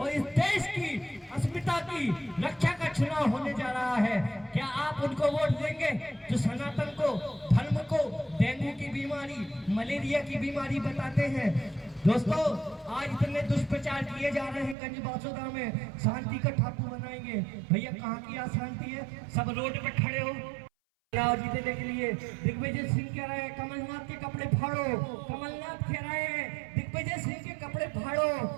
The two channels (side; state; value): left; drops out; at 14.8 s